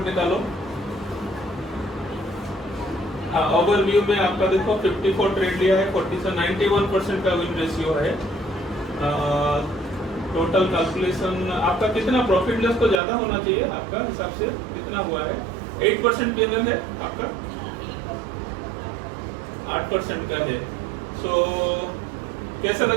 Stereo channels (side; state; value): left; drops out; at 13.0 s